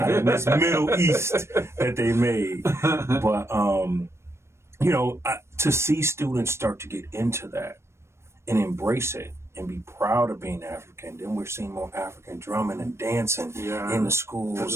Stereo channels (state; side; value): late; left; 0.13 ms